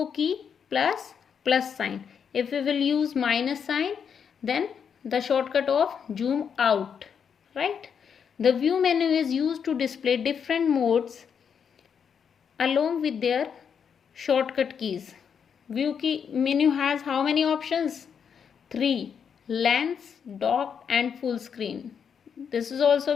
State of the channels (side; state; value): right; quieter; 7.2 dB